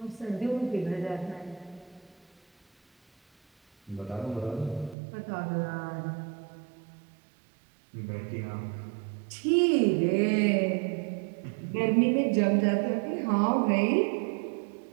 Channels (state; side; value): drops out; left; at 5.0 s